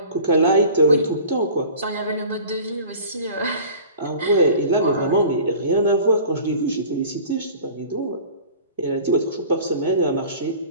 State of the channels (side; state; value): both; inverted; correlation -0.43